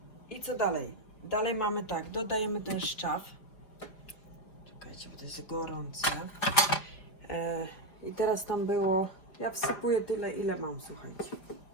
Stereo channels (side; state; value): right; late; 4.9 ms